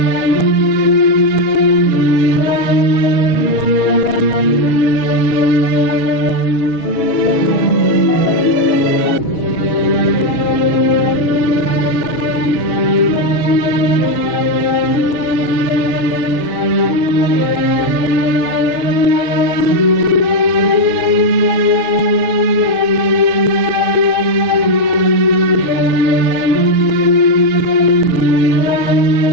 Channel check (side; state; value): right; late; 6.2 ms